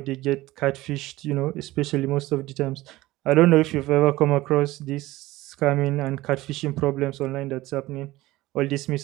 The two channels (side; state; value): left; quieter; 17.9 dB